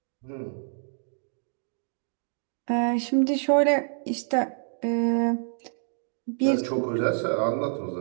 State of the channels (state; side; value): silent; left; digital silence